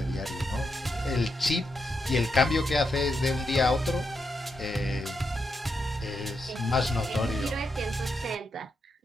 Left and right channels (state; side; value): normal; both; correlation 0.83